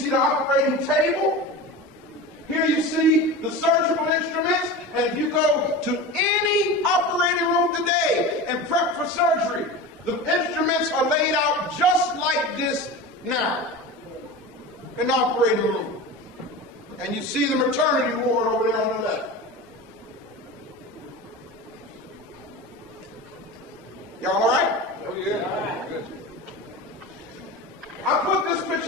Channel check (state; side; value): normal; both; correlation 0.29